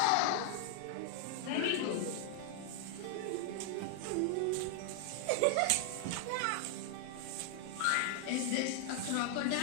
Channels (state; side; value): different; both; correlation 0.00